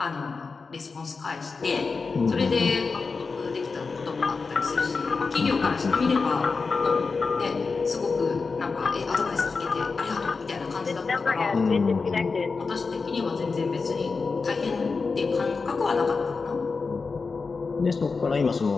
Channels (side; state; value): right; quieter; 4.5 dB